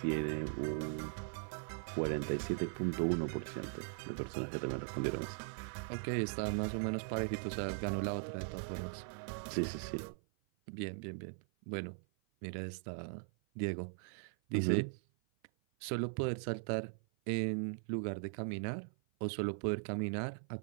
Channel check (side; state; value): left; silent; 51 dB below the other